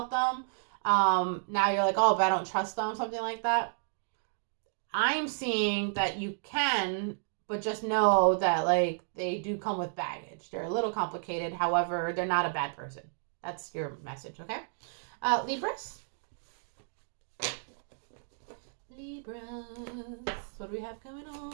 them, now you're like, oh, but I don't trust them, something like that. I'm seeing that you can, but just know that, like, they do come with baggage. They're a little complicated. However, they're not a bad person. That's your message, okay? Libras. Libras. What do we have going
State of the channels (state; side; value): silent; left; digital silence